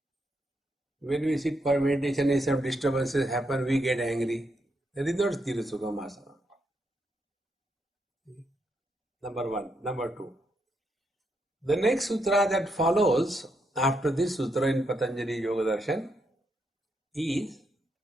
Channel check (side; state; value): both; normal; correlation 0.80